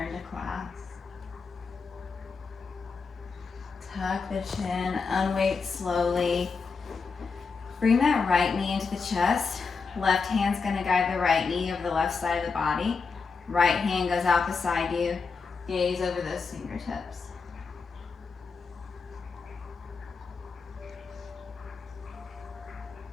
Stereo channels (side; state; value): right; quieter; 4.9 dB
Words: to class. Tuck the chin, unweight slowly. Bring that right knee into the chest. Left hand's gonna guide the right knee over the left side of the body. Right hand goes out beside you. Gaze over those fingertips.